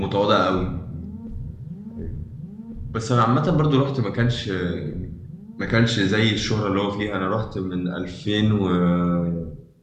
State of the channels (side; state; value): both; identical; correlation 1.00